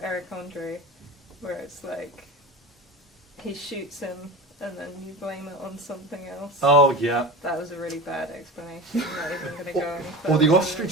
Eric Andre, where it's like, he shoots him and then you blame it on something else. Oh, yeah. That was a really bad explanation. I'm not even going to go any further. Or the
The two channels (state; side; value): normal; both; correlation 0.29